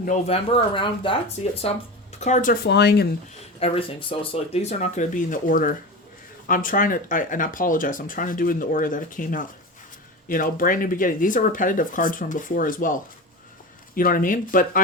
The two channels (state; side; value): normal; both; correlation 0.26